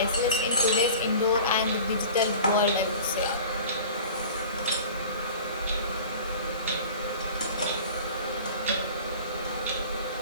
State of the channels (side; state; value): both; inverted; correlation -0.41